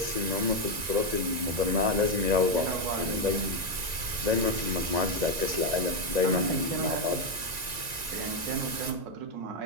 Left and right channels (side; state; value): left; late; 1.9 ms